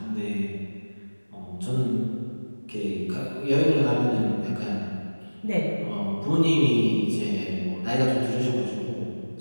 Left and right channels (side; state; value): both; inverted; correlation -1.00